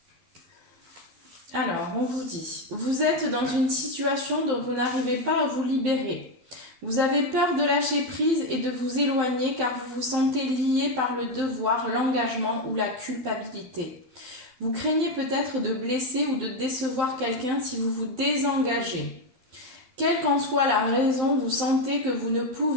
Alors, on vous dit, vous êtes dans une situation dont vous n'arrivez pas à vous libérer. Vous avez peur de lâcher prise et de vous éloigner car vous vous sentez lié par le devoir, l'engagement ou la culpabilité. Vous craignez peut-être de blesser ou de décevoir quelqu'un si vous vous désengagez. Quelle qu'en soit la raison, vous sentez que vous ne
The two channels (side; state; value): left; late; 12 ms